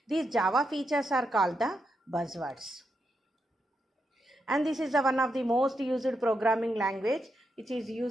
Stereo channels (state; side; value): normal; both; correlation 0.83